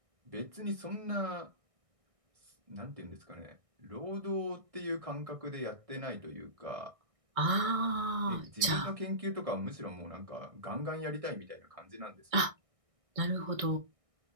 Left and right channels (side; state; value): left; late; 1.6 ms